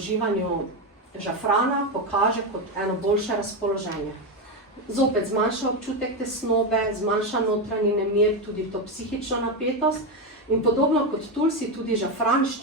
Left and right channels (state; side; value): normal; both; correlation 0.11